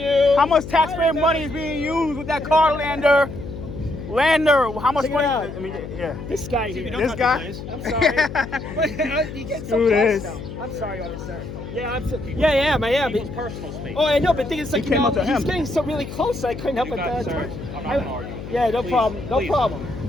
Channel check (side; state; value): left; noise; hum, 10 dB below the sound